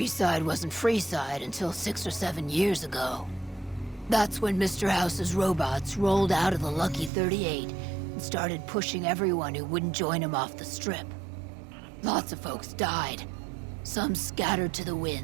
wasn't Freeside until 6 or 7 years ago. That's when Mr. House's robots rolled out of the Lucky 38 and started pushing everyone who wouldn't join him off the strip. Lots of folks died. Some scattered to the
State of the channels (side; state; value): left; drops out; at 7.1 s